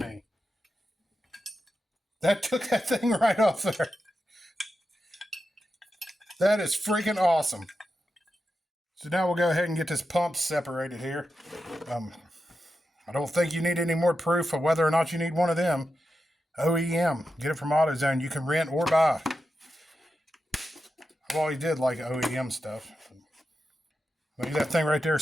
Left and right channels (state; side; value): normal; both; correlation 0.89